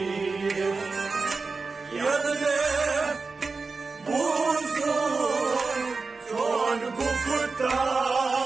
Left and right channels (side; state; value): left; quieter; 4.2 dB